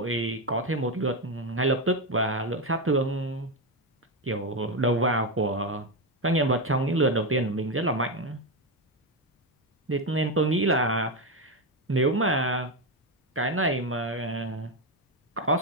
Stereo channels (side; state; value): both; normal; correlation 0.10